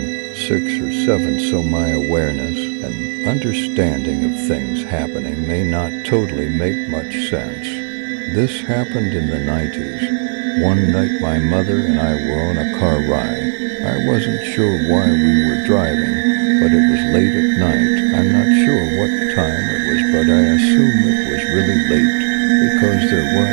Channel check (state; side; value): silent; left; digital silence